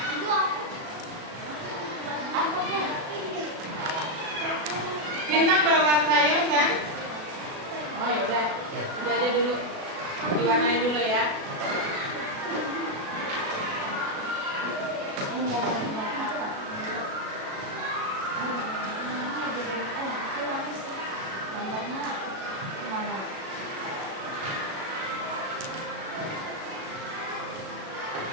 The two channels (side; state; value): left; late; 37 ms